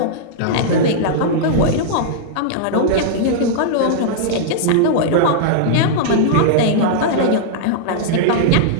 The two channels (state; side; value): different; both; correlation -0.01